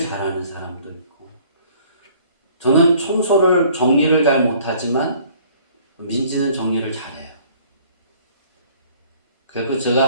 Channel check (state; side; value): inverted; both; correlation -0.56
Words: 사람도 있고, 저는 청소를 정리를 잘 못하지만 민지는 정리를 잘해요. 그리고